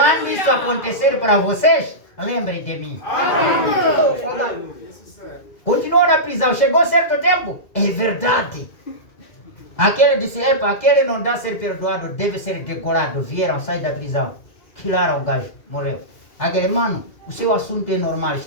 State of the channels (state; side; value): late; right; 2.1 ms